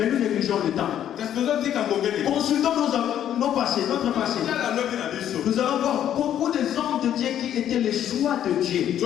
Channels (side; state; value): right; quieter; 10.5 dB